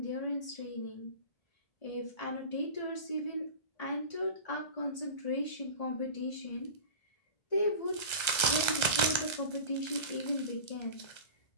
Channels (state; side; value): late; right; 1.3 ms